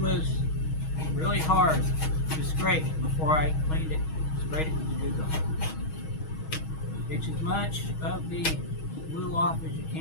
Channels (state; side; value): late; right; 6.3 ms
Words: really hard to scrape before I cleaned it, sprayed it with the Duct Tape. Get as much of the glue off as you